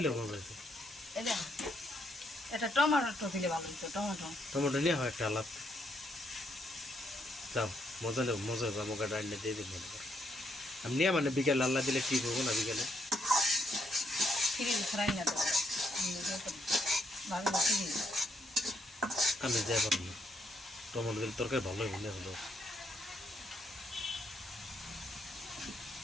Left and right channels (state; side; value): normal; both; correlation 0.75